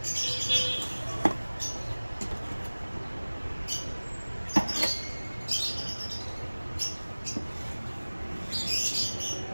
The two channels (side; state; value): both; inverted; correlation -1.00